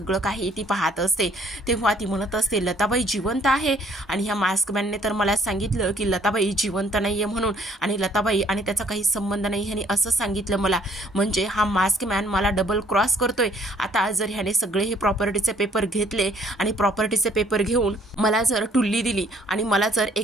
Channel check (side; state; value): both; normal; correlation 0.61